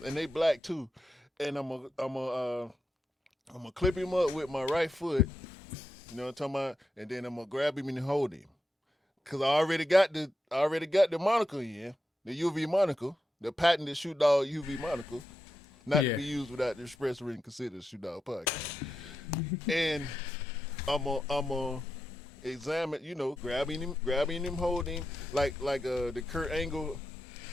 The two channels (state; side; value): normal; both; correlation 0.87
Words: and they black too. And I'm gonna clip him up with my right foot, you know what I'm talking about, and then I'm gonna grab him and hold him, cause I already got the monocle in, the UV monocle, the patented Shoot Dog UV monocle, not to be used without the express written consent of the Shoot Dog Podcast. And I'm gonna examine, grabbing him, holding like the Kurt Angle